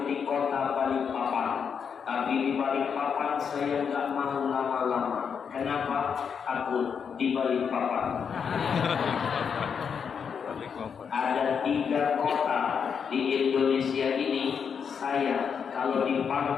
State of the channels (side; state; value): right; quieter; 6.8 dB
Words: di kota Balikpapan. Tapi di Balikpapan saya nggak mau lama-lama. Kenapa? Takut di Balikpapan. Ada 3 kota di Indonesia ini, saya kalau